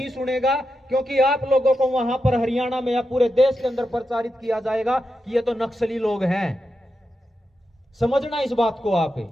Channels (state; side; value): normal; both; correlation 0.88